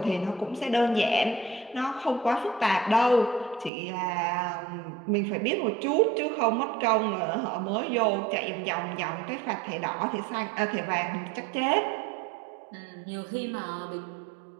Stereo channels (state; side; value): drops out; left; at 3.7 s